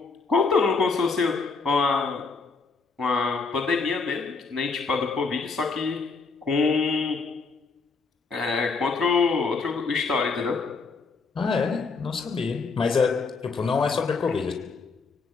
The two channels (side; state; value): right; quieter; 4.5 dB